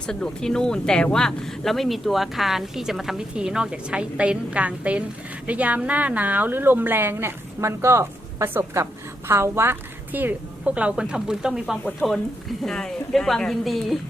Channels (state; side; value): normal; both; correlation 0.82